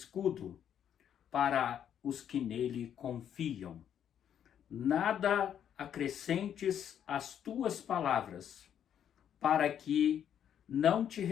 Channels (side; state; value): right; quieter; 9.3 dB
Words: para os que nele confiam. Nada acrescentes às tuas palavras, para que não te